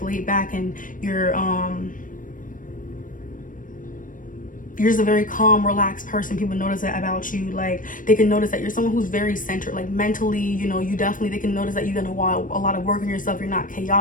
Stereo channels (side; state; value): right; late; 0.39 ms